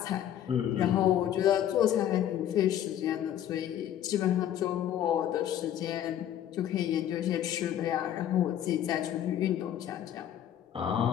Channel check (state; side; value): quieter; right; 10.9 dB